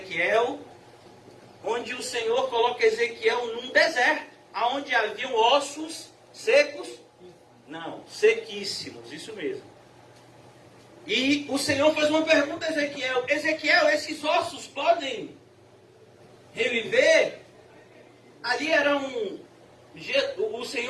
onde o Senhor coloca Ezequiel num deserto, onde haviam ossos secos? Não, sequíssimos, isso mesmo. E o Senhor faz uma pergunta a Ezequiel: Ezequiel, esses ossos podem reviver? Ali era o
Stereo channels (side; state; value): both; identical; correlation 1.00